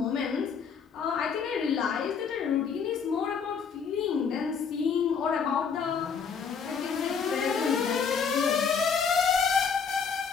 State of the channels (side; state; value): right; quieter; 6.3 dB